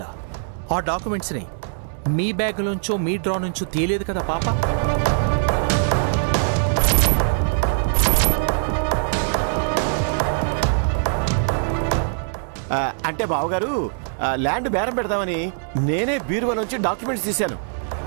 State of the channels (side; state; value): left; silent; digital silence